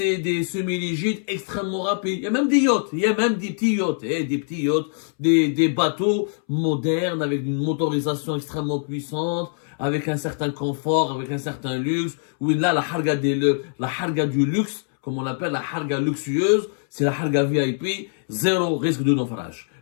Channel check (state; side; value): silent; right; 63 dB below the other